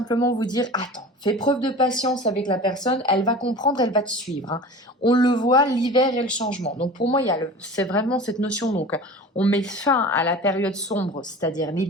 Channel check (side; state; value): both; normal; correlation 0.36